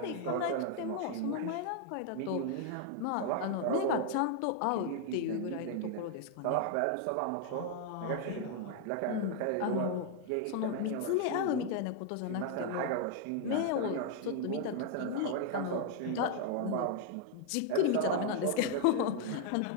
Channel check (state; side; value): different; both; correlation 0.00